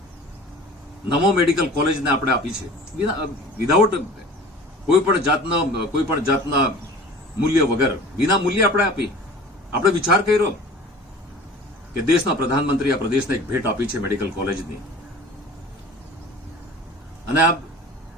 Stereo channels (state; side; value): normal; both; correlation 0.42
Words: નમો મેડિકલ કોલેજને આપણે આપી છે, વિધાઉટ કોઈ પણ જાતના મૂલ્ય વગર, વિના મૂલ્ય આપણે આપી. આપણે વિચાર કર્યો કે દેશના પ્રધાનમંત્રી આ પ્રદેશને એક ભેટ આપી છે મેડિકલ કોલેજની, અને આ